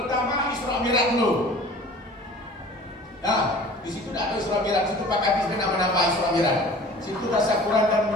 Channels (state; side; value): normal; both; correlation 0.44